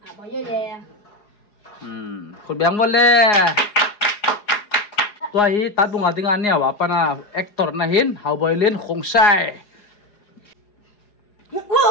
Apa ya? Kau biang boleh. Tua hi tat bunga tingan ni apa na aktor nahin Hawboylin Khongsai.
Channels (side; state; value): right; late; 4.8 ms